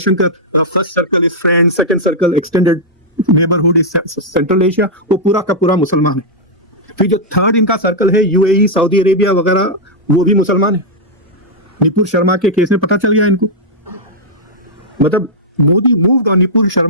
first circle is friend, second circle extended neighbourhood is central Asia, वो पूरा का पूरा मुसलमान है। फिर जो थर्ड इनका सर्कल है यूएई, सऊदी अरेबिया वगैरह, वो भी मुसलमान है। निपुर शर्मा के केस में पता चल गया इनको। मतलब Modi moved on Nupur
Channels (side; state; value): both; normal; correlation -0.06